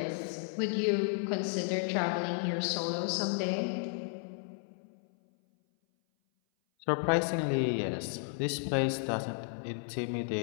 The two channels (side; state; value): right; silent; 56 dB below the other